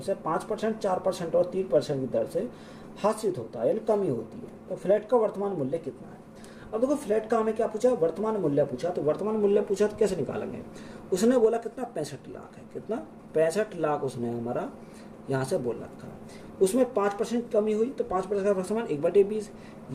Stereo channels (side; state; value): both; identical; correlation 1.00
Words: 5%, 4% और 3% की दर से हासिल होता है, यानी कमी होती है। तो फ्लैट का वर्तमान मूल्य कितना है। अब देखो फ्लैट का हमें क्या पूछा, वर्तमान मूल्य पूछा, तो वर्तमान मूल्य पूछा तो कैसे निकालेंगे, उसने बोला कितना 65 लाख है, कितना 65 लाख उसने हमारा यहाँ से बोल रखा है। उसमें 5% कमी हुई तो 5% का समान 1/20,